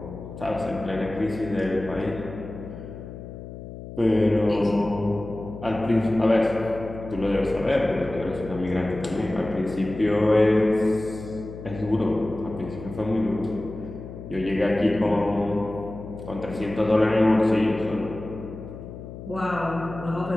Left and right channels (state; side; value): noise; left; hum, 12 dB below the sound